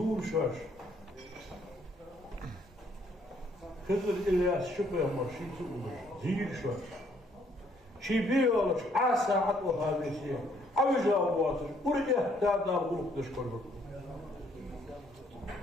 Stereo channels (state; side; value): normal; both; correlation 0.66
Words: شاش خضر إلياس شبه مرشيد سؤولش زير شاش شي بيولش عاسا عطو هذه الشيء عوجا واتش ورجه تادار غلق تشكر بكم